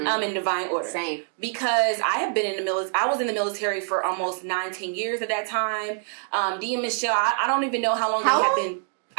divine order. Same. Because I have been in the military. I was in the military for almost 19 years at that time. Dee and Michelle, I don't even know how long they have been.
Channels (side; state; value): left; silent; 59 dB below the other